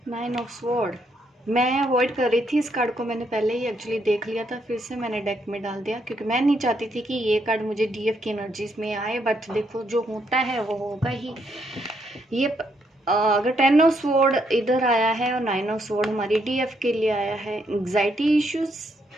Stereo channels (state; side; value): normal; both; correlation 0.75